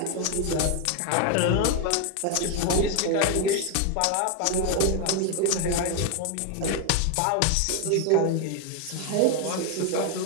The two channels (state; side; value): different; both; correlation 0.01